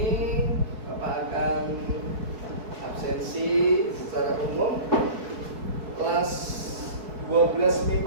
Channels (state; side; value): late; left; 4.6 ms